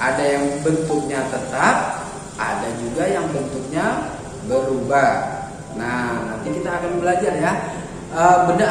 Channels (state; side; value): identical; both; correlation 1.00